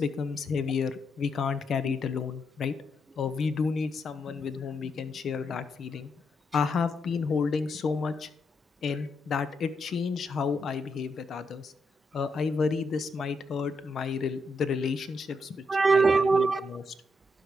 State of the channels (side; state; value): both; normal; correlation 0.80